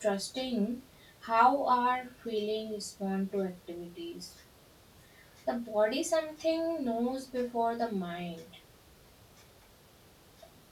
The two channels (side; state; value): both; identical; correlation 1.00